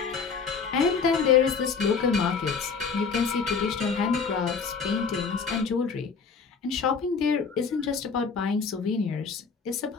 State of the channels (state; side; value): quieter; right; 5.5 dB